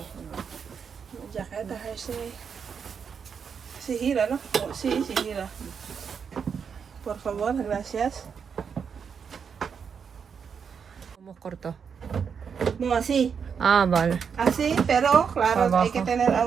jaketa, si Hira, no? Oh, si Hira. Por favor, gracias. Como corto. No, así. Ah, vale. Así, pero claro, Abajo. hay que tener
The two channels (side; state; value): left; quieter; 6.6 dB